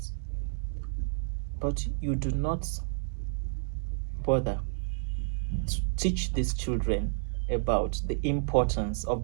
But you do not bother to teach these children about the importance of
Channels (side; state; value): left; silent; digital silence